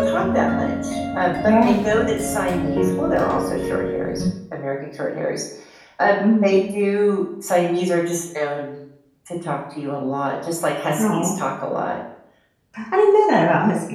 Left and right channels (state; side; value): identical; both; correlation 1.00